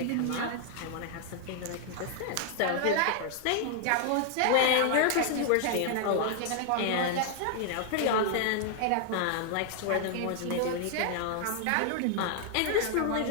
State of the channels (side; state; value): both; different; correlation 0.00